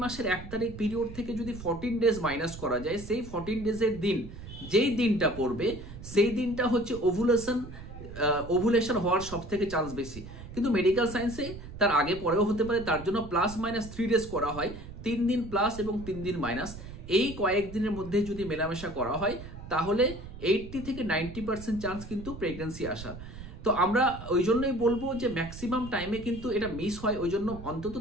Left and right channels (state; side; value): noise; right; rumble, 13 dB below the sound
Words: মাসের 1 তারিখ পিরিয়ড থেকে যদি 14 ডেজ মাইনাস করা যায়, সেই 14 ডেজের দিন যেই দিনটা পড়বে সেই দিনটা হচ্ছে ওভুলেশন হওয়ার সব থেকে চান্স বেশি। কিন্তু মেডিকেল সায়েন্সে তার আগে পরেও হতে পারে, তার জন্য +- 3 ডেজ করা হয়, 3 দিন প্লাস এবং 3 দিন মাইনাস। এই কয়েকদিনের মধ্যে যদি মেলামেশা করা হয় তাহলে 80 থেকে 90% চান্স কিন্তু প্রেগনেন্সি আসার। তো আমরা ওই জন্যই বলবো যে ম্যাক্সিমাম টাইমে কিন্তু এটা মিস হয়। ওই জন্য অন্তত